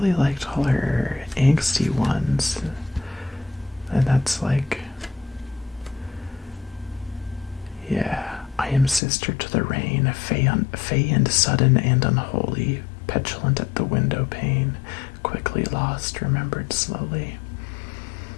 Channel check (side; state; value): right; drops out; at 9.0 s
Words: liked all her angsty ones, and that's like, yeah, I am sister to the rain, fey and sudden and unholy, petulant at the window pane, quickly lost, remembered slowly.